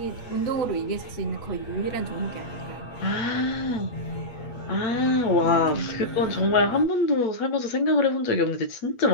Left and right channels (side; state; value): right; late; 8.3 ms